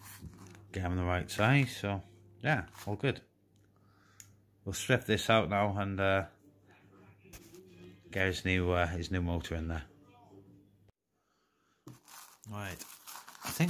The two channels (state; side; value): identical; both; correlation 1.00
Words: them the right size. So yeah, all good. We'll strip this out now and get his new motor in there. Right, I